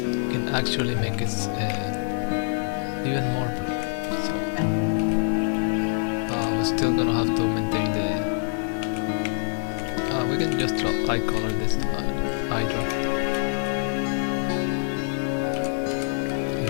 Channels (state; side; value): silent; right; 62 dB below the other